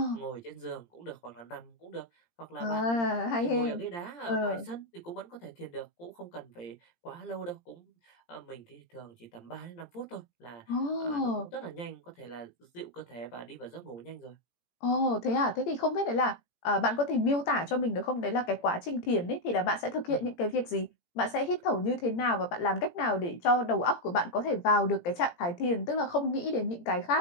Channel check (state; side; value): late; right; 17 ms